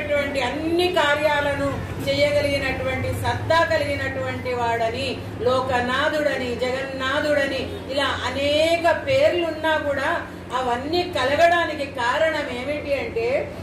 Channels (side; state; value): both; identical; correlation 1.00